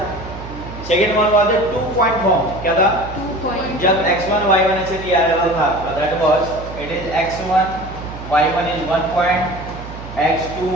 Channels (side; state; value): right; noise; hum, 12 dB below the sound